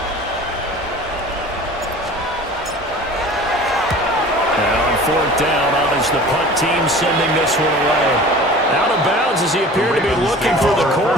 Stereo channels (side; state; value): both; normal; correlation 0.42